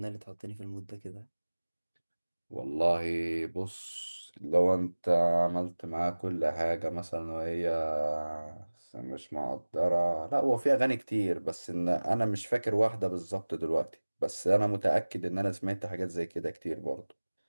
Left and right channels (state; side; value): inverted; both; correlation -1.00